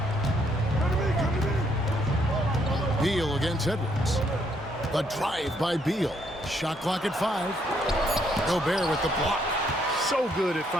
Beal against Edwards. The drive by Beal. Shot clock at 5. Gobert with the block. So good at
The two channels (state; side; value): normal; both; correlation 0.71